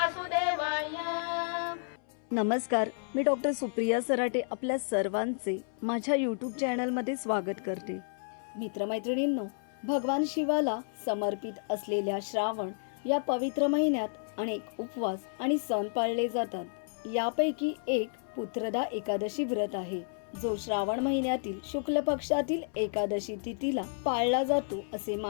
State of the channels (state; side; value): silent; right; 57 dB below the other